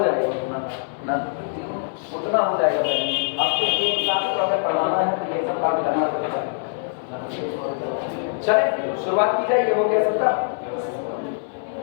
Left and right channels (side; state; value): right; silent; digital silence